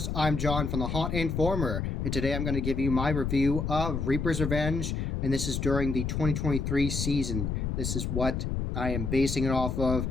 I'm John from the Haunt Informer, and today I'm going to give you my review of Reaper's Revenge, and this is during the 2023 season. This is what I am basing it off of,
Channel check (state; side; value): noise; left; rumble, 2 dB below the sound